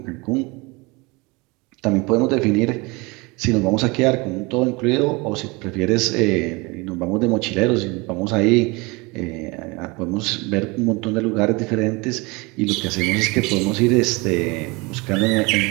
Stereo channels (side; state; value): left; quieter; 26.0 dB